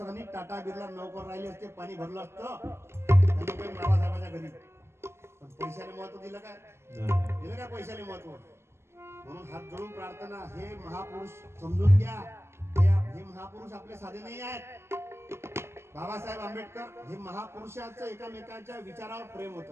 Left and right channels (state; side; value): late; left; 0.12 ms